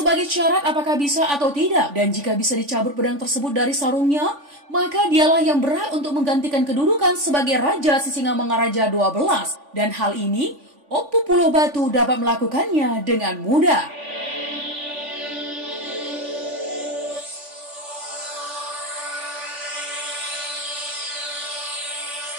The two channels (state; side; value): late; left; 3.5 ms